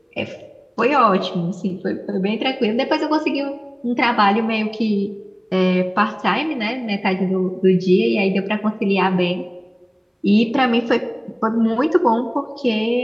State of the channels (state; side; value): identical; both; correlation 1.00